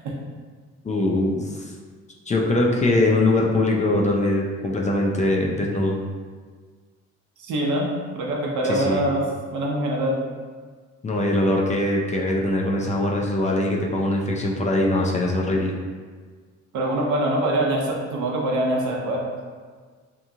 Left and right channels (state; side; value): normal; both; correlation 0.47